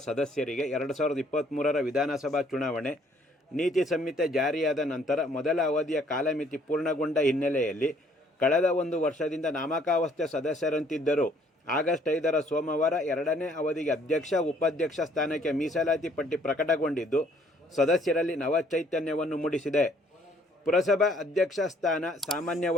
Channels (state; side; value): normal; both; correlation 0.62